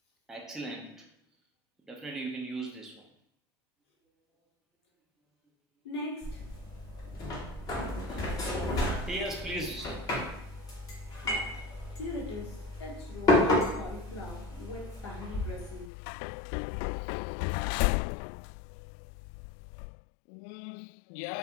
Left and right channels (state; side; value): drops out; right; at 15.9 s